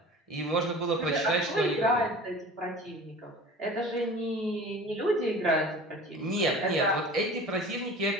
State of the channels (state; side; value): normal; both; correlation 0.40